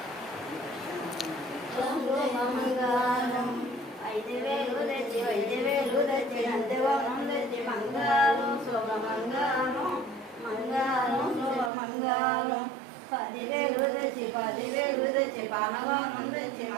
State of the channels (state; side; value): drops out; left; at 11.7 s